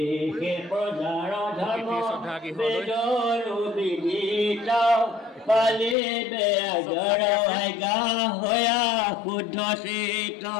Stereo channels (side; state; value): right; drops out; at 6.0 s